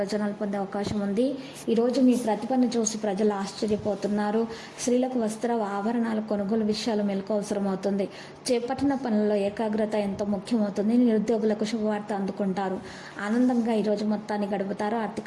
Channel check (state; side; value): identical; both; correlation 1.00